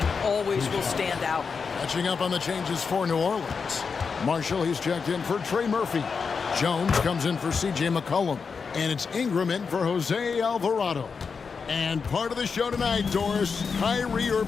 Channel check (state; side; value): quieter; right; 5.4 dB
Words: always will stand out. Catching up on the changes for New Orleans. Marshall, he's checked in for Trey Murphy. Jones comes in for C.J. McCollum. And it's Ingram in for Jose Alvarado. And part of the show tonight, Doris, Kyrie